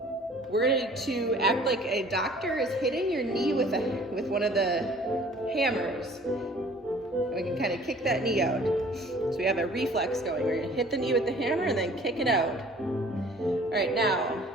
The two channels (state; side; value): normal; both; correlation 0.51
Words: We're going to act like a doctor is hitting your knee with one of the hammers. We can kind of kick that knee out. So we have a reflex going. We're gonna hit the knee with the hammer and then kick it out. All right, now